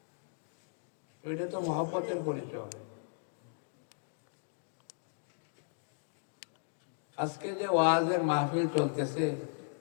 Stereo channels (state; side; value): silent; right; digital silence